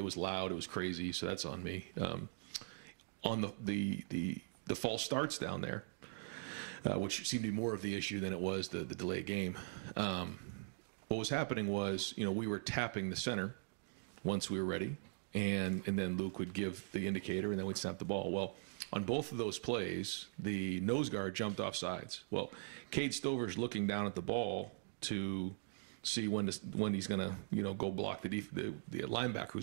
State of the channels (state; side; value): silent; left; digital silence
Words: was loud, it was crazy, so that's on me. On the false starts down there, which seemed to be more of the issue than it was the delayed game. What was happening was, you know, we were tapping the center once we were ready, and then Luke would give the indicator, and then we'd snap the ball. Well, on both of those plays, the nose guard jumped off sides. Well, Cade Stover's looking down at the ball to see when he's going to, you know, go block the linebacker